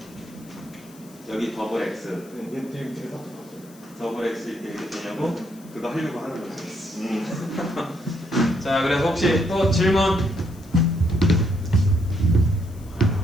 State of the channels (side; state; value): left; noise; hiss, 25 dB below the sound